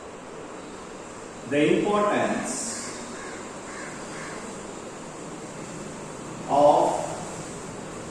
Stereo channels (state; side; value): identical; both; correlation 1.00